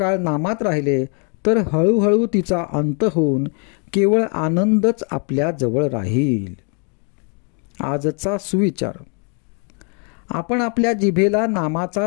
नामात राहिले तर हळूहळू तिचा अंत होऊन केवळ आनंदच आपल्या जवळ राहील. आजचा सुविचार. आपण आपल्या जिभेला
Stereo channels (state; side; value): quieter; right; 38.4 dB